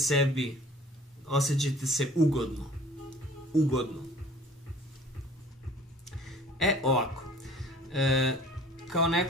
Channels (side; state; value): both; normal; correlation 0.49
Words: osjećajte se ugodno. Ugodno. Ovako. Kao